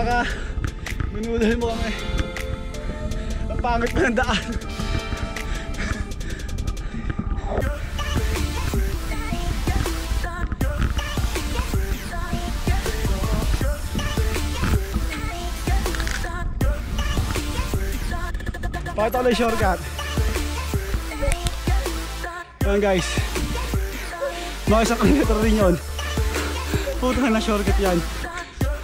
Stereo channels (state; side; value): identical; both; correlation 1.00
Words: ka! Minudal mo kami! Ang pangit pa ng daan! Pakita ko lang yung shortcut. Ayan guys, mga isang kilometer rin yun. Puta na shortcut yan.